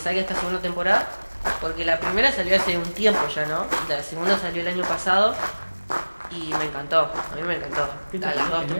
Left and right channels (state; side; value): inverted; both; correlation -1.00